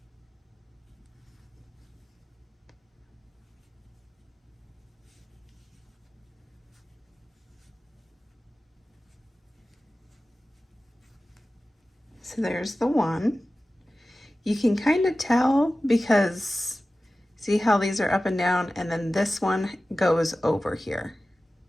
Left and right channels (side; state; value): both; normal; correlation 0.96